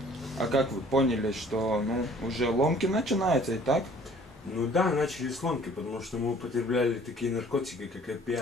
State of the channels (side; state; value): both; normal; correlation 0.54